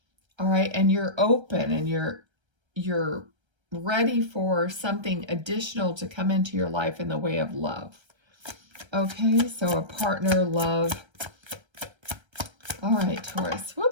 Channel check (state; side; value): late; left; 1.3 ms